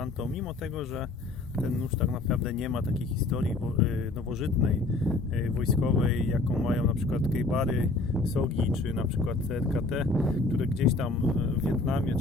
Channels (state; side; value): quieter; right; 3.2 dB